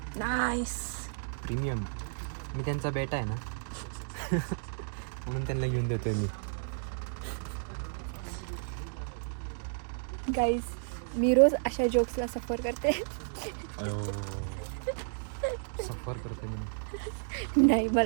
Nice premium. मी त्यांचा बेटा आहे ना म्हणून त्यांना घेऊन देतोय मी. गाईज मी रोज अशा जोक्सला सफर करते. सफर करते मी. नाही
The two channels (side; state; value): left; silent; digital silence